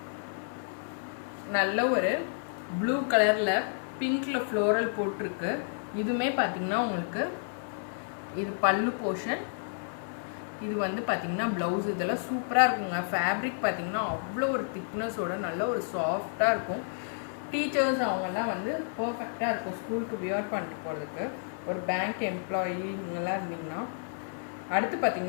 நல்ல ஒரு ப்ளூ கலரில் பிங்க்கில் ஃப்ளோரல் போட்டிருக்கு. இதுவுமே பார்த்தீங்கன்னா உங்களுக்கு இது பல்லு போர்ஷன். இது வந்து பார்த்திங்கன்னா ப்ளவுஸ். இதெல்லாம் சூப்பராக இருக்குங்க. ஃபேப்ரிக் பார்த்திங்கன்னா அவ்வளோ ஒரு திக்னஸோட நல்ல ஒரு சாஃப்டாக இருக்கும். டீச்சர்ஸ் அவங்கெல்லாம் வந்து பர்ஃபெக்டாக இருக்கும் ஸ்கூலுக்கு வியர் பண்ணிட்டு போகிறதுக்கு. ஒரு பேங்க் எம்ப்ளாயி இவங்கெல்லாம் இருந்தீங்கன்னா. அடுத்து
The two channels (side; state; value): right; silent; digital silence